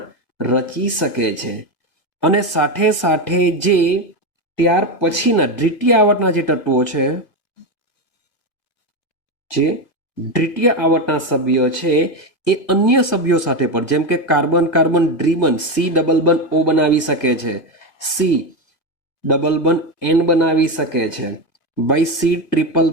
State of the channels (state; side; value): late; right; 1.8 ms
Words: રચી શકે છે. અને સાથે સાથે જે ત્યાર પછીના દ્વિતીય આવર્તના જે તત્વો છે, જે દ્વિતીય આવર્તના સભ્યો છે એ અન્ય સભ્યો સાથે પણ, જેમ કે કાર્બન કાર્બન ડ્રીબન સી ડબલ બંધ ઓ બનાવી શકે છે, સી ડબલ બંધ એન બનાવી શકે છે, બાય સી ટ્રિપલ